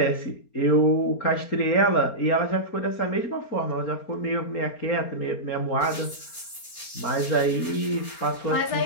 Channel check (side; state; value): right; late; 4.3 ms